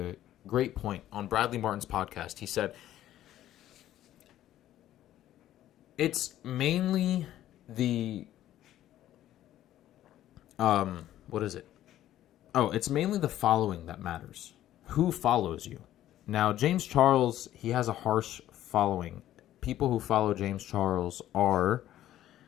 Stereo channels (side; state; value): right; quieter; 12.9 dB